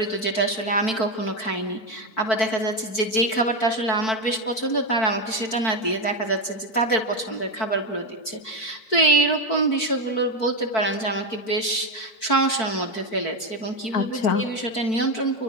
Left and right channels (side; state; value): right; late; 4.5 ms